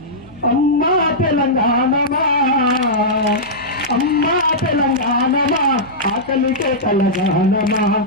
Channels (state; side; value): noise; left; hum, 27 dB below the sound